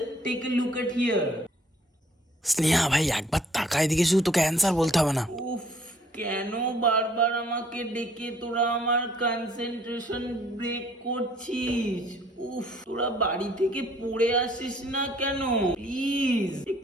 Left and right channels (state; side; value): normal; both; correlation 0.60